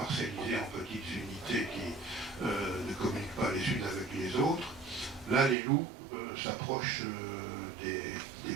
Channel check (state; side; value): drops out; left; at 5.6 s